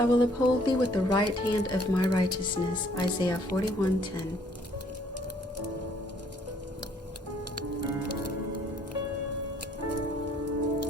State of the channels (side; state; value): both; normal; correlation 0.62